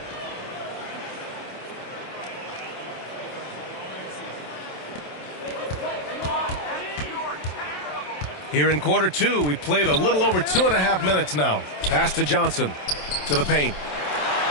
Here in quarter 2, we played a little over 2.5 minutes now. Pass to Johnson. To the paint.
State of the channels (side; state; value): right; late; 27 ms